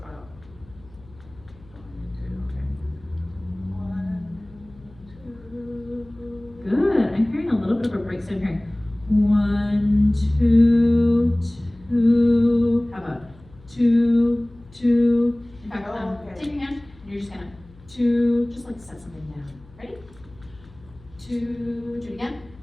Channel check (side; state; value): left; noise; hum, 24 dB below the sound